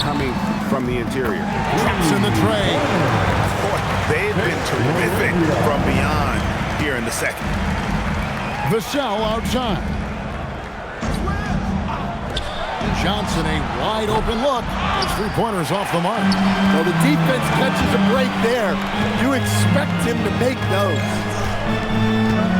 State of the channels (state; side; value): identical; both; correlation 1.00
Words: coming from the interior. Traps in the tray. Boy, they've been terrific from beyond here in the second. Vassell outside. Johnson, a wide open look. His three-pointer's off the mark. Well, the defense catches a break there. You expect him to make those.